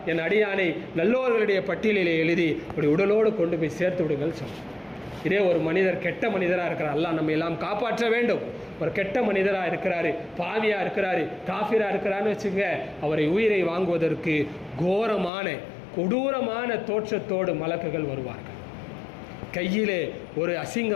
என் அடியானை நல்லோர்களுடைய பட்டியலிலே எழுதி அப்படி உடலோடு கொண்டு போய் சேர்த்து விடுங்கள் சொல்லும். இதே ஒரு மனிதர் கெட்ட மனிதராக இருக்கிறார், அல்லாஹ் நம்ம எல்லாம் காப்பாற்ற வேண்டும். ஒரு கெட்ட மனிதராக இருக்கிறாரு, பாவியாக இருக்கிறாரு, காஃபிராக இருக்கிறான்னு வச்சுங்க, அவரை உயிரை வாங்குவதற்கு கோரமான கொடூரமான தோற்றத்தோடு மலக்குகள் வருவார்கள். கையிலே ஒரு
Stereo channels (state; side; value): drops out; right; at 15.3 s